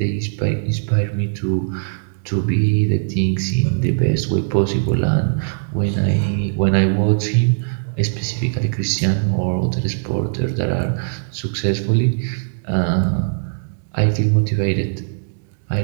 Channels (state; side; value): silent; left; digital silence